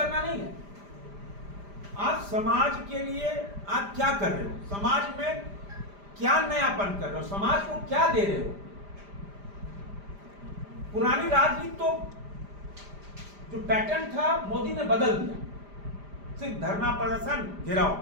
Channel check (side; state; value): left; late; 5.0 ms